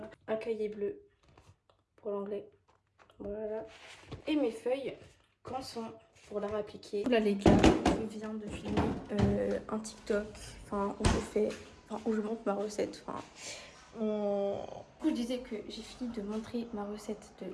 Un cahier bleu pour l'anglais. Voilà. Et mes feuilles, quand sont pour l'art appliqué. Là les gars, je viens de filmer un TikTok, enfin où je fais, enfin où je montre ma recette. Enfin, du coup, je disais que j'ai fini de montrer ma recette de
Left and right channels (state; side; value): identical; both; correlation 1.00